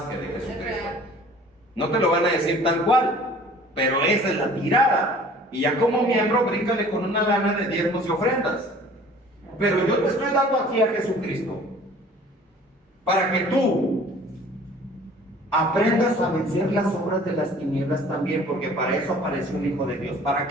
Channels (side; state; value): both; normal; correlation 0.49